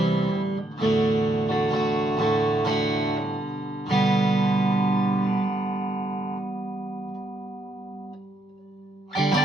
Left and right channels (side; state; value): both; normal; correlation 0.77